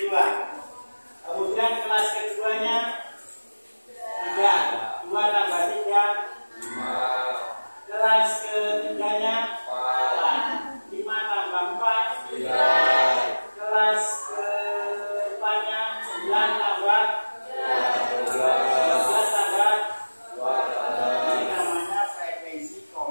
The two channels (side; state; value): both; inverted; correlation -1.00